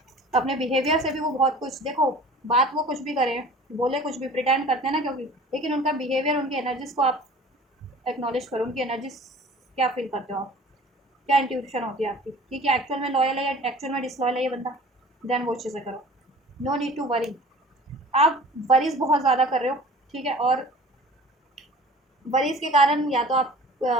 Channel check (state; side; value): normal; both; correlation 0.45